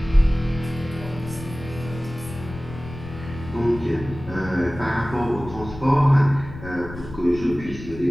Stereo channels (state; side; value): noise; left; rumble, 13 dB below the sound